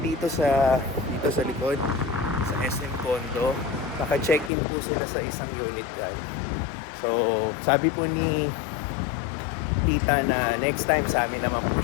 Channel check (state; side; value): drops out; right; at 4.5 s